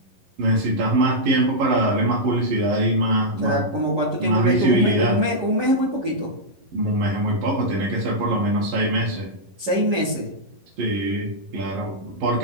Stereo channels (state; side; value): late; left; 11 ms